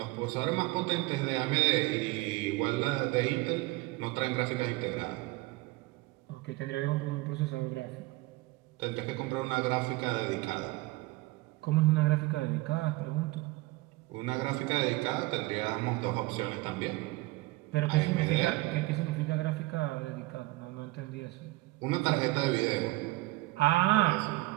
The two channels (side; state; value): left; quieter; 20.7 dB